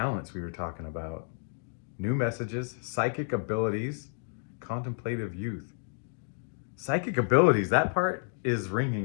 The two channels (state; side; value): silent; right; 57 dB below the other